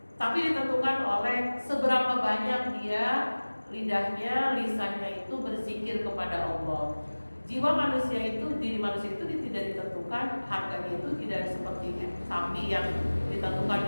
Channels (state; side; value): inverted; both; correlation -1.00